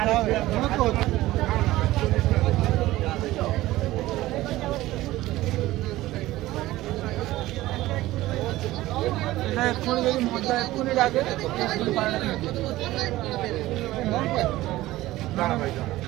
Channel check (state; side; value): quieter; left; 16.8 dB